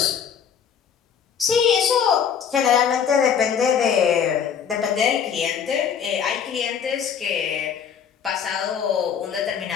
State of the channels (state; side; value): quieter; right; 7.6 dB